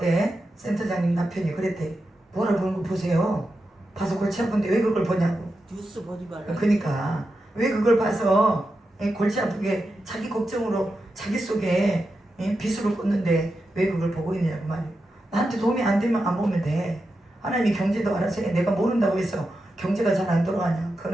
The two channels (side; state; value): both; normal; correlation 0.89